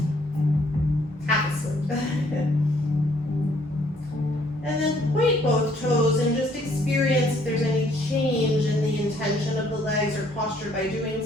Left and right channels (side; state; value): both; normal; correlation 0.64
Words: half a slit. And then point both toes and just experience if there's any change in the intention of the legs or posture by